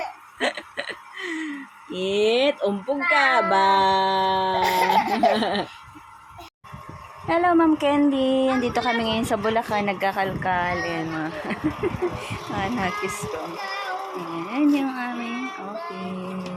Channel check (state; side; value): identical; both; correlation 1.00